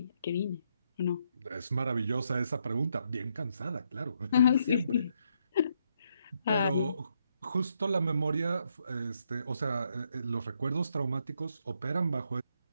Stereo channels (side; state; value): both; inverted; correlation -0.77